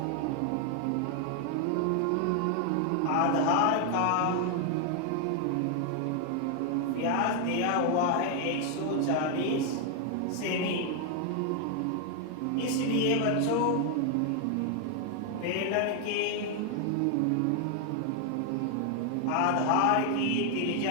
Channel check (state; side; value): different; both; correlation 0.00